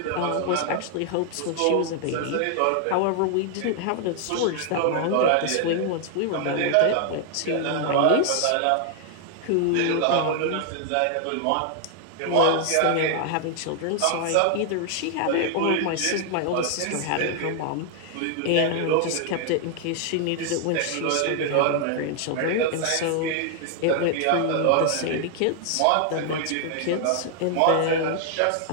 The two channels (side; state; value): both; different; correlation 0.00